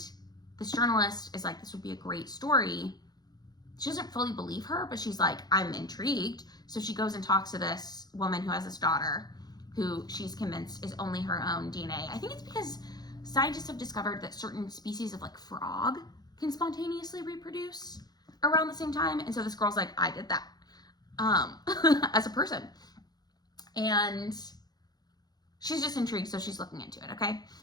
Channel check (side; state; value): right; late; 0.19 ms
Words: this journalist is like, this would be a great story. She doesn't fully believe her, but she's like, I'm intrigued. So she goes and talks to this woman who has this daughter who she's convinced is only her own DNA. I think it's because scientists have discovered that certain species of like frog can spontaneously reproduce around the same time. And so this girl's like, I did that. As a person, and she's just intrigued, so she's looking into it. Okay,